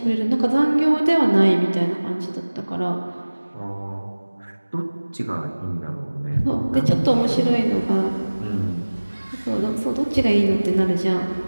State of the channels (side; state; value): both; inverted; correlation -1.00